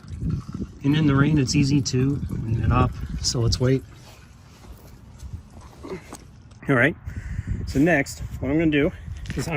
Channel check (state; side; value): identical; both; correlation 1.00